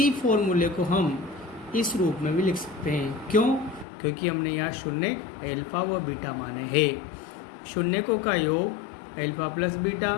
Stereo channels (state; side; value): drops out; right; at 3.9 s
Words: फॉर्मूले को हम इस रूप में भी लिख सकते हैं। क्यों? क्योंकि हमने यहाँ शून्य अल्फा व बीटा माने हैं। शून्यकों का योग alpha plus beta